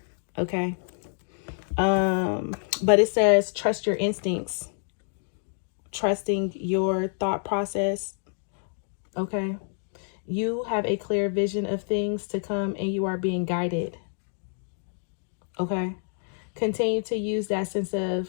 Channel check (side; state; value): right; silent; digital silence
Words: okay? But it says trust your instincts, trusting your thought process, okay? You have a clear vision of things to come and you are being guided, okay? Continue to use that sense